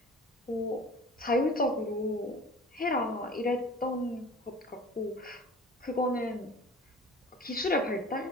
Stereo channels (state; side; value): normal; both; correlation 0.42